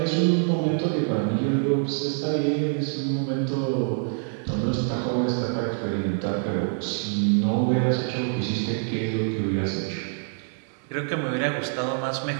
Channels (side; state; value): left; silent; 59 dB below the other